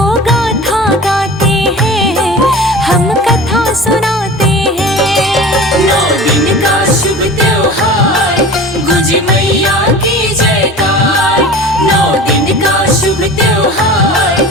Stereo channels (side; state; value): both; normal; correlation 0.37